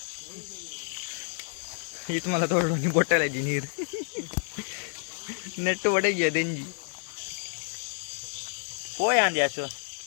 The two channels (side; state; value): right; silent; digital silence